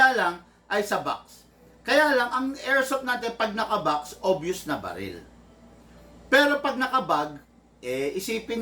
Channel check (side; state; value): both; identical; correlation 1.00